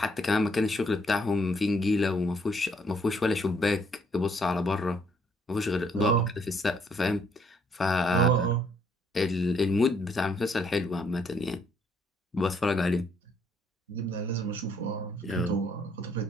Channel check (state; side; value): normal; both; correlation 0.68